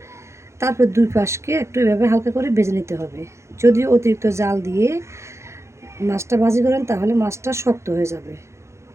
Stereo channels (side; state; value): left; late; 0.14 ms